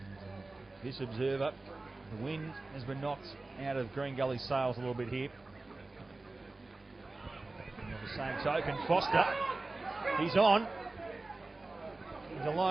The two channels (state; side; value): quieter; left; 3.2 dB